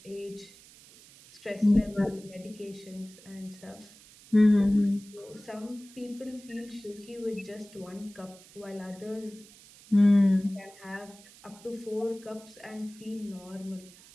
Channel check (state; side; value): noise; right; hiss, 22 dB below the sound